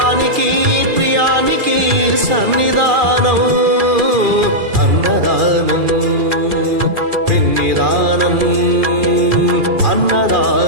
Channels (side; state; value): left; late; 2.4 ms